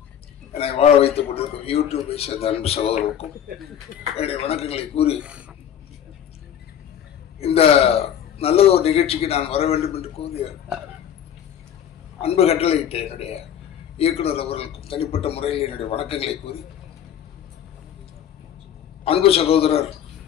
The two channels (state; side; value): quieter; right; 9.6 dB